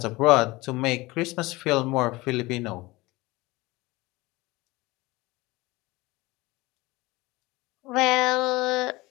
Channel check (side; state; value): right; quieter; 21.4 dB